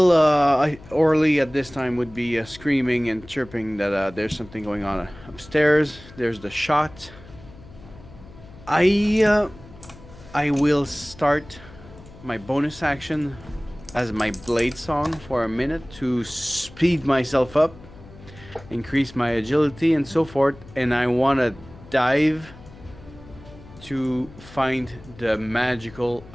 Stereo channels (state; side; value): noise; left; hum, 20 dB below the sound